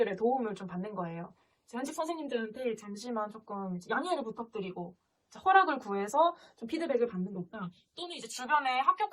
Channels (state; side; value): identical; both; correlation 1.00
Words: 도움을 좀 받는 거예요. 현직 선생님들한테 잠시만 조금 양해를 부탁드리고 허락을 구해서 좀 피드백을 받는 것과 또는 이제 주변에